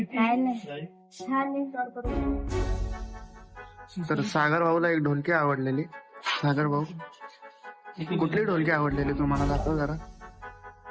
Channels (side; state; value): both; identical; correlation 1.00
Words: काय नाही, छान आहे. तर सागर भाऊला एक ढोलकी आवडलेली. सागर भाऊ, कुठली ढोलकी आवडलेली तुम्हाला? दाखव जरा.